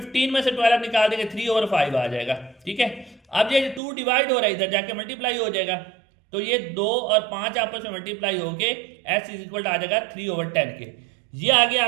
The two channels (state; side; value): drops out; left; at 3.8 s